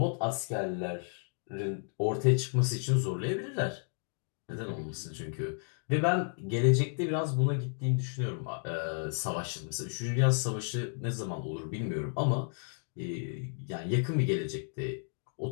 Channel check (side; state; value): right; silent; 56 dB below the other